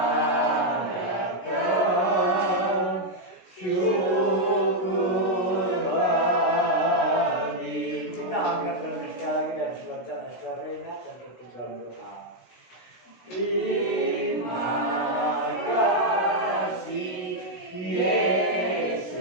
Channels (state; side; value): late; right; 16 ms